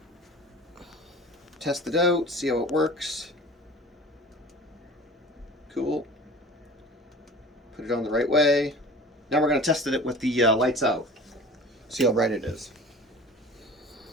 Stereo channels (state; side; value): normal; both; correlation 0.40